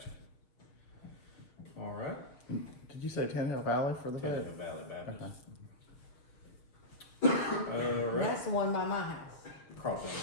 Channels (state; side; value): late; right; 6.7 ms